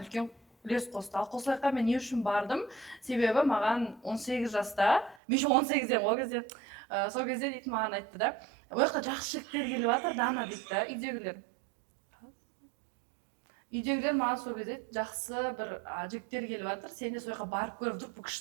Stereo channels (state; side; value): drops out; left; at 5.2 s